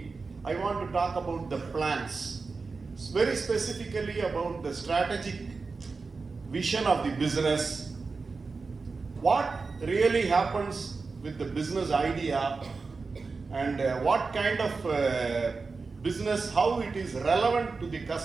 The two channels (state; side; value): quieter; left; 4.3 dB